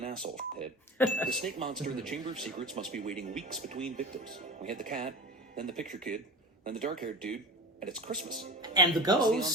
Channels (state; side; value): normal; both; correlation 0.31